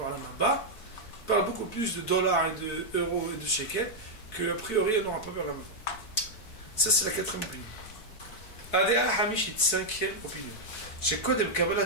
Haba, ils parlent beaucoup plus de dollars et d'euros et de shekels, qu'a priori on n'aura pas vers la mort. Ça c'est la quatrième opinion. Adéa Hamishit, cinquième opinion. Chez Kodem Kabbalat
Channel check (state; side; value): late; right; 4.5 ms